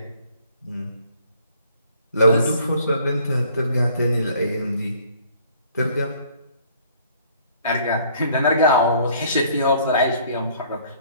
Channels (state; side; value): inverted; both; correlation -0.58